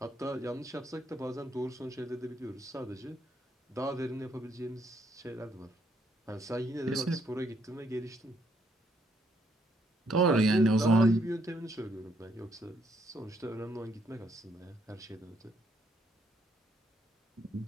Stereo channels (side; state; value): both; normal; correlation 0.71